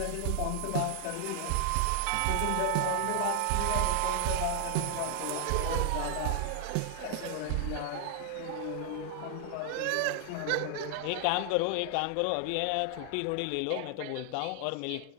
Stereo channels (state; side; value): different; both; correlation 0.00